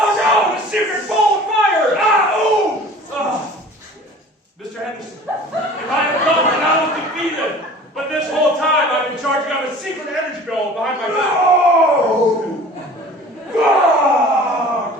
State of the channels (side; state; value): both; normal; correlation 0.44